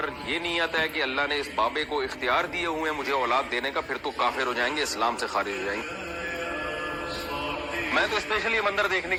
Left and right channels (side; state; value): both; identical; correlation 1.00